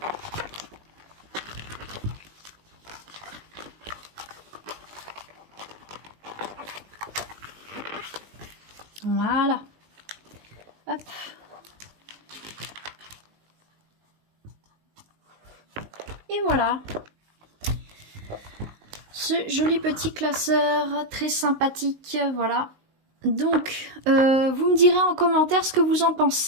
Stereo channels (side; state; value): left; late; 19 ms